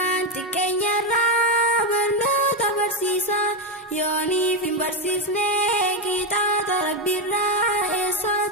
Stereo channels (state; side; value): normal; both; correlation 0.09